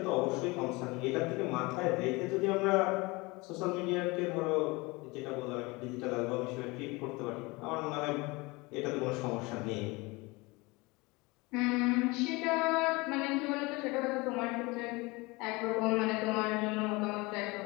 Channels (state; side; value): quieter; right; 24.5 dB